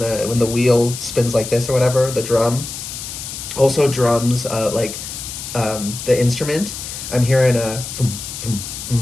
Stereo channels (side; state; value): left; noise; hiss, 9 dB below the sound